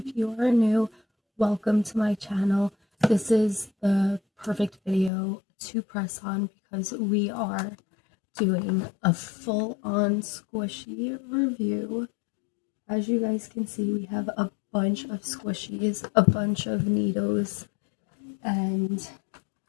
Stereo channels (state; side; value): drops out; right; at 5.1 s